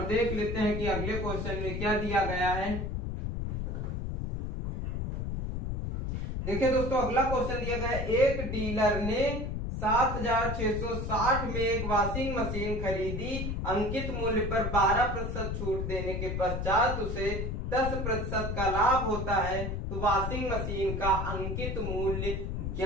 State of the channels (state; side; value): noise; left; rumble, 3 dB below the sound